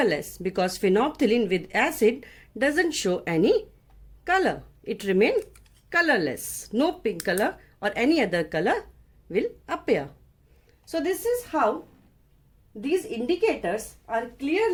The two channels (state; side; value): identical; both; correlation 1.00